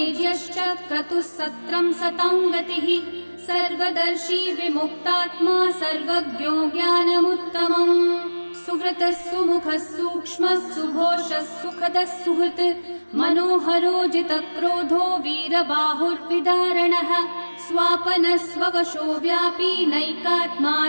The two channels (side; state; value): both; inverted; correlation -1.00